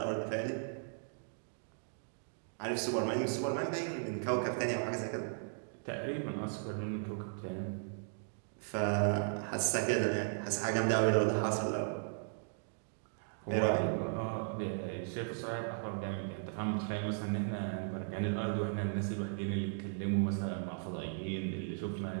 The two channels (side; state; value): left; silent; digital silence